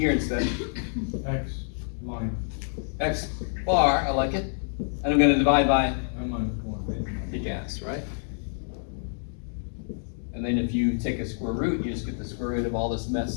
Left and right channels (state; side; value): silent; right; digital silence